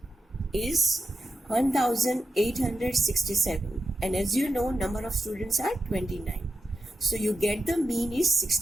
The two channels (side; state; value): both; normal; correlation 0.88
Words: is 1867, and as you know number of students are 29. So you get the mean is